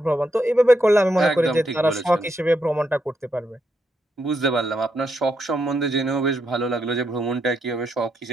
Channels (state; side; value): normal; both; correlation 0.80